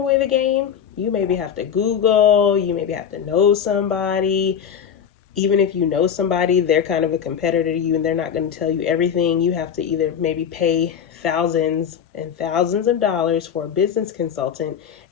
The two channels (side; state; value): right; quieter; 8.1 dB